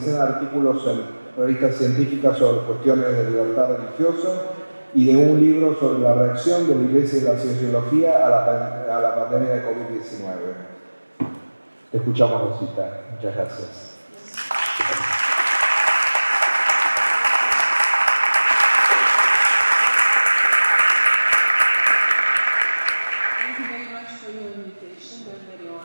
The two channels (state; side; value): inverted; both; correlation -1.00